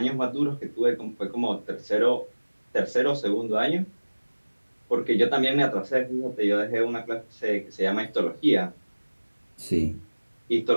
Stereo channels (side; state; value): both; inverted; correlation -1.00